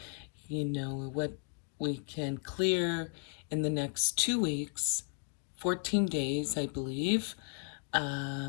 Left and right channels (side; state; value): right; quieter; 39.3 dB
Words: what we can clear in the next 2 weeks, 14 days, I believe,